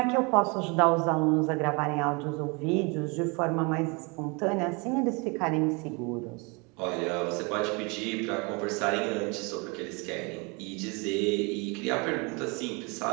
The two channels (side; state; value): left; quieter; 29.8 dB